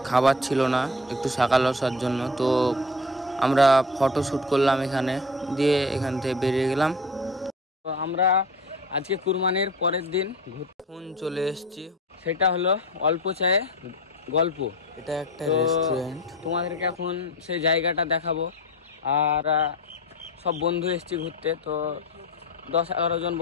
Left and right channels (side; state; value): both; normal; correlation 0.34